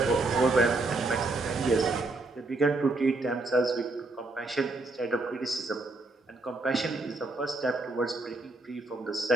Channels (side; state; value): left; quieter; 3.1 dB